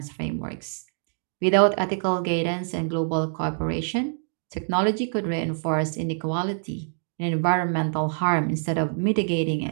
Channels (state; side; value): silent; left; digital silence